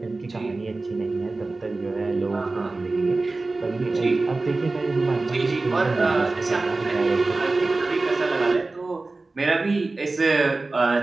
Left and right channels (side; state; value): left; quieter; 3.4 dB